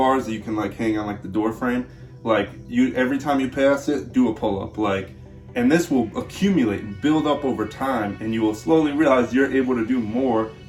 that you can, like, hang on, like, the door frame. Like, every time you pass it, do a pull-up, like, and this will accumulate and build up over time, and you will slowly realize you're able to do more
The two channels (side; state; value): both; identical; correlation 1.00